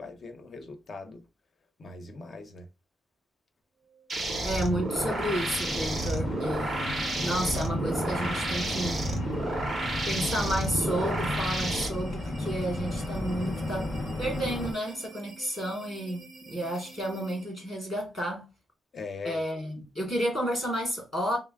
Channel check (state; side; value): normal; both; correlation 0.80